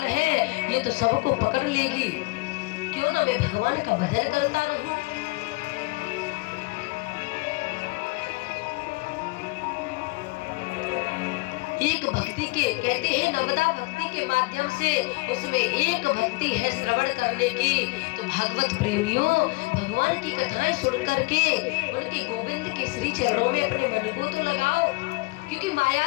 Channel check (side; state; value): right; quieter; 25.9 dB